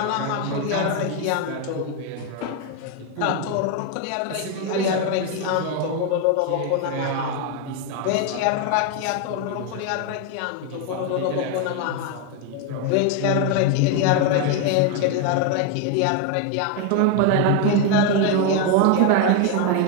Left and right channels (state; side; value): different; both; correlation 0.01